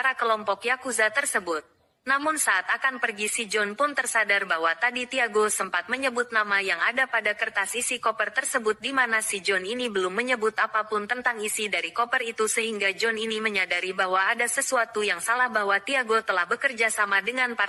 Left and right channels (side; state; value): both; identical; correlation 1.00